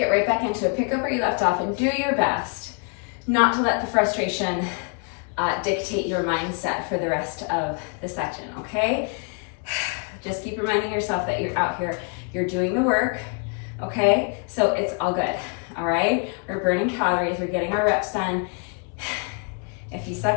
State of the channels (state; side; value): quieter; right; 37.5 dB